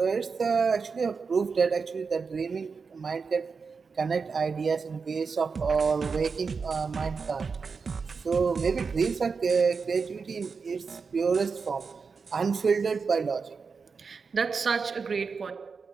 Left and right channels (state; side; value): quieter; left; 5.1 dB